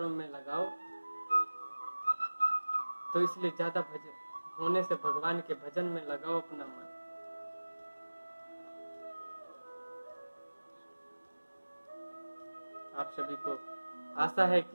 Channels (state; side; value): inverted; both; correlation -1.00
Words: में लगाओ। तो इसलिए ज्यादा होने से भगवान के भजन में लगाओ अपना मन। आप सभी को आशा है